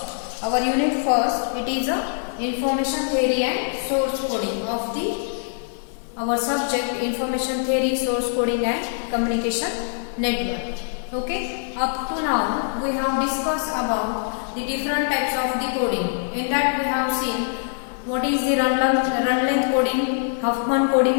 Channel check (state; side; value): silent; right; 63 dB below the other